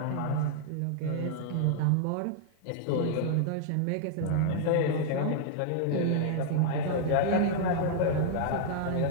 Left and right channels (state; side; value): different; both; correlation -0.01